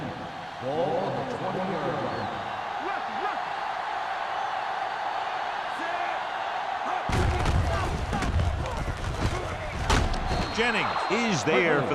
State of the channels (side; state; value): both; identical; correlation 1.00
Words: Ball on the 20-yard line. Jennings is there for